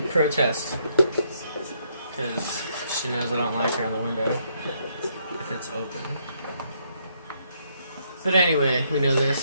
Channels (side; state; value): both; inverted; correlation -0.72